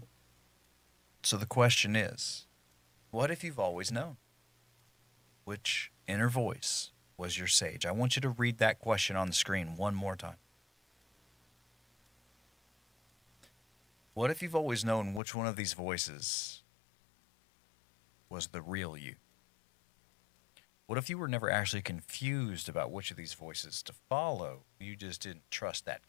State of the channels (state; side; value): drops out; right; at 15.2 s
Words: So the question is, what if you've always known which inner voice was your sage? I want you to read that question on the screen one more time. What if you've always known which one of these voices was the real you? What if you were never actually confused about which of these voices to follow? You just didn't trust that